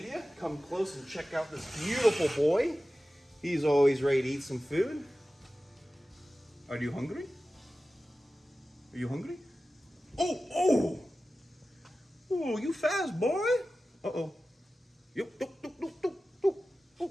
Come close and check out this beautiful boy. He's always ready to eat some food. Are you hungry? Are you hungry? Oh, you fast, boy. Uh-oh.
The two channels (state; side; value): normal; both; correlation 0.95